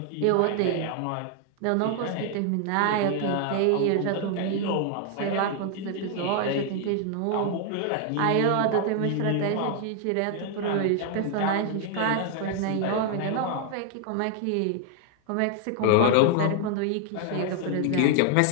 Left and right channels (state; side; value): different; both; correlation 0.00